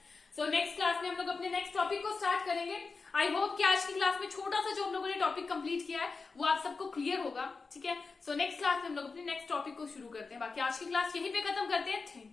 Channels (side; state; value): right; quieter; 4.4 dB